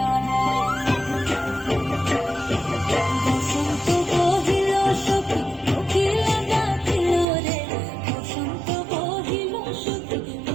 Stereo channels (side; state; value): left; drops out; at 7.2 s